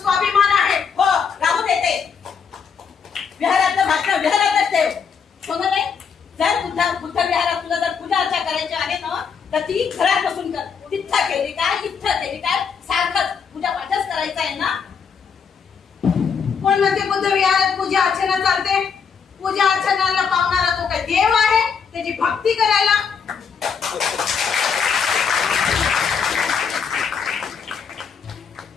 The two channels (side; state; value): right; quieter; 6.4 dB